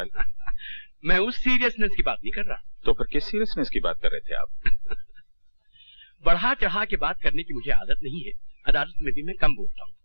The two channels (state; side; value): inverted; both; correlation -1.00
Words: मैं उस सीरियसनेस की बात नहीं कर रहा। तो फिर किस सीरियसनेस की बात कर रहे थे आप? बढ़ा चढ़ा के बात करने की मुझे आदत नहीं है। अदालत में भी मैं कम बोलता हूँ,